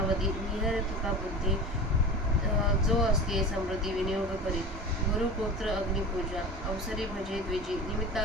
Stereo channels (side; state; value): both; normal; correlation 0.32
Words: निहर तुका बुद्धी जो असते समृद्धी विनियोग करी. गुरुपुत्र अग्निपूजा अवसरी भजे द्विजी